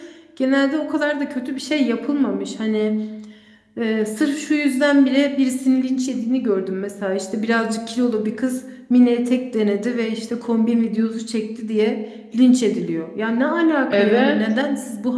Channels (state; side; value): identical; both; correlation 1.00